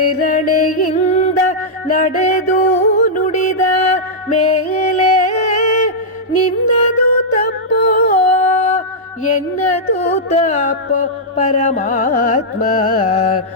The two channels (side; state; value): both; normal; correlation -0.09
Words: ನಡೆದು ನುಡಿದ ಮೇಲೆ ನಿನ್ನದು ತಪ್ಪೋ ಎನ್ನದು ತಪ್ಪೋ ಪರಮಾತ್ಮ,